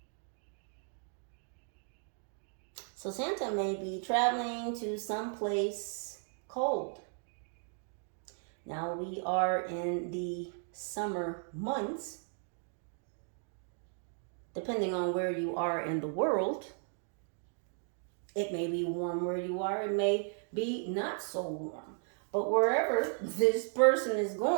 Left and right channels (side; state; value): left; silent; 54 dB below the other